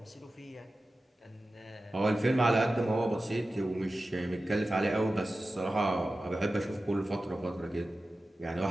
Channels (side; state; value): both; normal; correlation 0.95